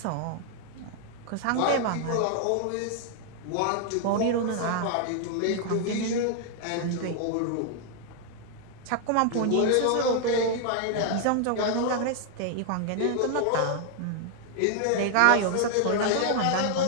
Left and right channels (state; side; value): different; both; correlation 0.00